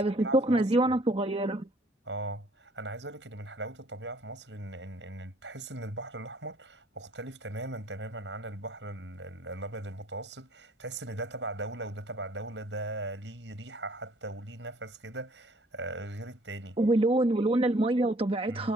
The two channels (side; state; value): both; normal; correlation 0.59